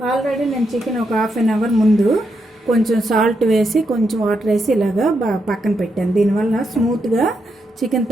ఆల్రెడీ నేను చికెన్ ఒక హాఫ్ అన్ అవర్ ముందు కొంచెం సాల్ట్ వేసి కొంచెం వాటర్ వేసి ఇలాగా పక్కన పెట్టాను. దీనివల్ల స్మూత్గా చికెన్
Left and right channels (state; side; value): normal; both; correlation 0.82